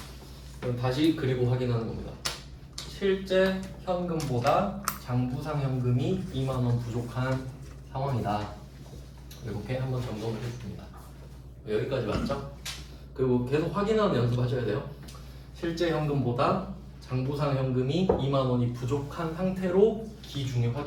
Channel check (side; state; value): both; identical; correlation 1.00